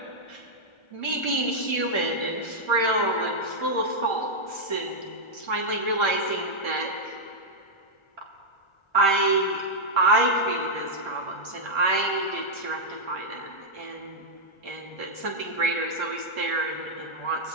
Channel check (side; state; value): right; late; 1.4 ms